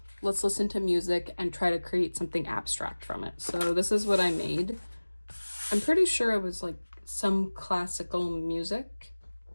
let's listen to music and try to create something abstract from it. So this is what I made. I'm pretty sure it was like some classical music,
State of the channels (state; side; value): inverted; both; correlation -1.00